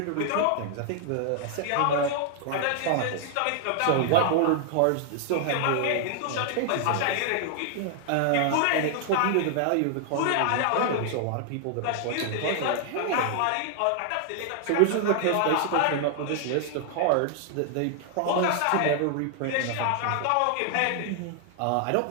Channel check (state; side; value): different; both; correlation 0.00